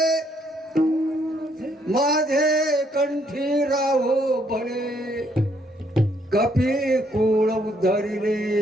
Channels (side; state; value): both; normal; correlation 0.70